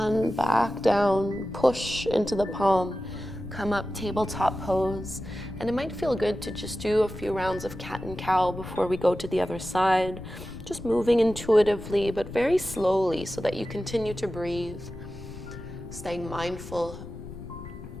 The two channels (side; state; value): left; noise; rumble, 13 dB below the sound